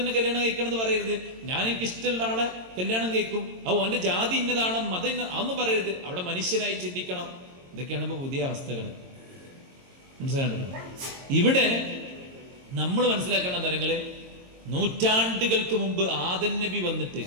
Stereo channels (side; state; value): left; late; 22 ms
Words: കല്യാണം കഴിക്കണം എന്ന് പറയരുത്. ഞാൻ എനിക്ക് ഇഷ്ടമുള്ള ആളെ കല്യാണം കഴിക്കും, അവന്റെ ജാതി ഇന്നതാണ്, മതം അതൊന്നും പറയരുത്. അവിടെ മനുഷ്യനായി ചിന്തിക്കണം. ഇതൊക്കെയാണ് ഇപ്പൊ പുതിയ അവസ്ഥകൾ. മനസ്സിലാണ്ടല്ലോ? ഇവിടെ നമ്മൾ മനസ്സിലാക്കേണ്ട കാര്യങ്ങള്, നൂറ്റാണ്ടുകൾക്ക് മുമ്പ് ആദം നബി വന്നിട്ട്